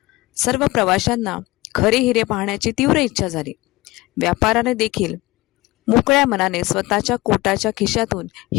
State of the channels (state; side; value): quieter; right; 20.2 dB